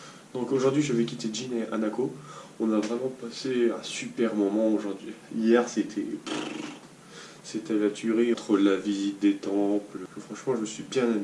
Donc aujourd'hui je vais quitter Jin et Hanako. On a vraiment passé un super moment aujourd'hui. Hier c'était la tuerie entre la visite des temples. Franchement je me suis bien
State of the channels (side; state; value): both; identical; correlation 1.00